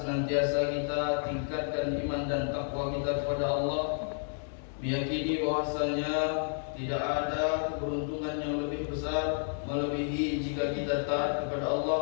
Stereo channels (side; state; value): right; silent; 57 dB below the other